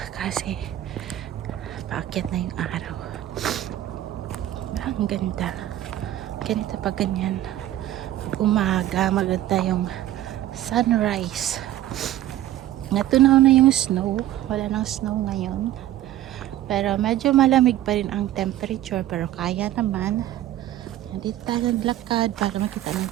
kasi paakyat na yung araw. Ang ganda. Ganito pa ganyan. Umaga, maganda yung sunrise. Natunaw na yung snow. Wala nang snow ngayon. Pero medyo malamig pa rin ang temperature. Pero kaya naman. Dito tayo naglakad para makita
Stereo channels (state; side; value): quieter; left; 13.3 dB